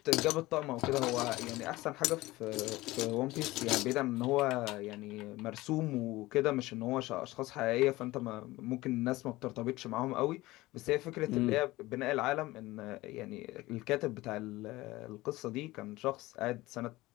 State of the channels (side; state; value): right; quieter; 19.0 dB